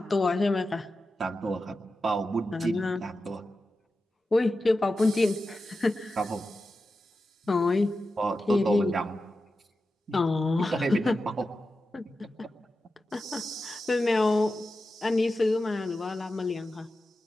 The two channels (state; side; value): normal; both; correlation 0.92